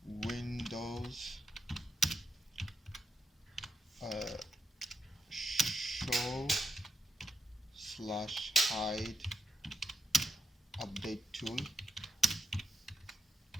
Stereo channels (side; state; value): both; normal; correlation 0.83